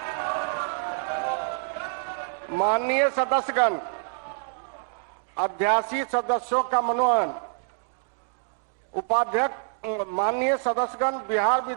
माननीय सदस्यगण, अध्यासी सदस्यों का मनोनयन। उपाध्यक्ष, माननीय सदस्यगण, बिहार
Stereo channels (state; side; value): silent; left; digital silence